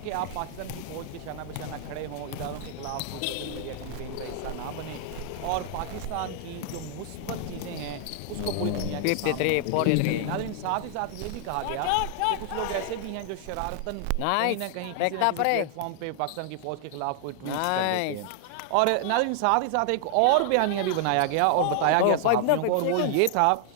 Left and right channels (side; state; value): both; different; correlation 0.00